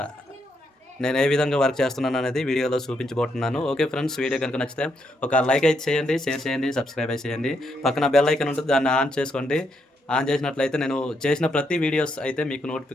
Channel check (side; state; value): both; normal; correlation 0.78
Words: నేను ఏ విధంగా వర్క్ చేస్తున్నాను అనేది వీడియోలో చూపించబోతున్నాను. ఓకే ఫ్రెండ్స్, వీడియో కనుక నచ్చితే ఒక లైక్ అయితే చేయండి, షేర్ చేయండి, సబ్స్క్రైబ్ అయితే చేయండి. పక్కన బెల్ ఐకాన్ ఉంటుంది, దాన్ని ఆన్ చేసుకోండి. ఆన్ చేసినట్లయితే నేను చేసిన ప్రతి వీడియోస్ అయితే మీకు